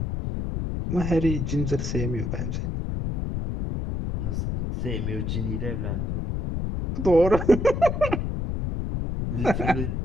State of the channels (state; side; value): noise; left; rumble, 2 dB below the sound